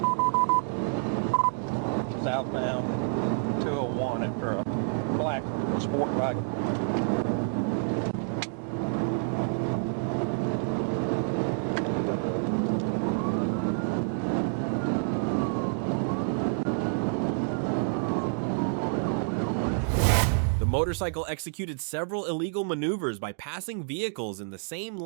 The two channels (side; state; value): left; silent; digital silence